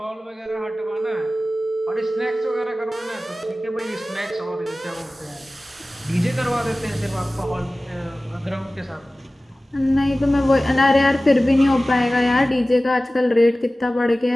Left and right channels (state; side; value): normal; both; correlation 0.97